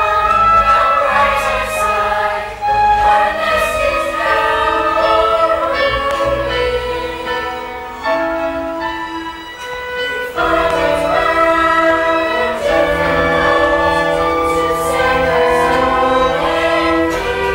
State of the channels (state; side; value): identical; both; correlation 1.00